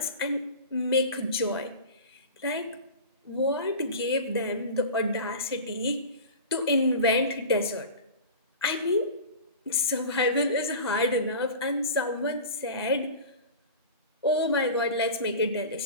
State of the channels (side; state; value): both; inverted; correlation -0.34